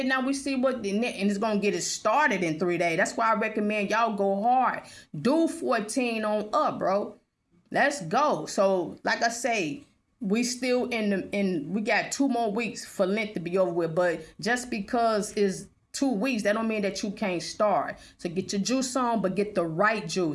now we see what, and it's going to get it started in 3 days. That's why I recommend y'all go hard. Do 14 on up, bro. Let's go. So, like I say, we still we got 2 more weeks for Lent to be over with. But just because it's 2 weeks, that don't mean that you can't start. So get your juice on, but get the right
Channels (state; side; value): identical; both; correlation 1.00